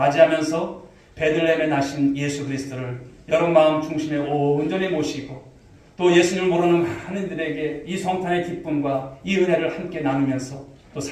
베들레헴에 나신 예수 그리스도를 여러분 마음 중심에 온전히 모시고 또 예수님을 모르는 많은 이들에게 이 성탄의 기쁨과 이 은혜를 함께 나누면서 또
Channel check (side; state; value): both; identical; correlation 1.00